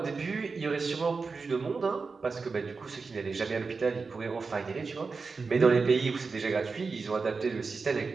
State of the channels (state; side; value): quieter; left; 4.5 dB